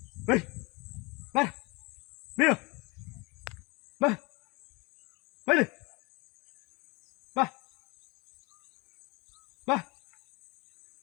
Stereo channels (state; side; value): quieter; right; 26.8 dB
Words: ಬೈ ಬಾ ಬೇವು ಬಾ ಬೈಲಿ ಬಾ ಬಾ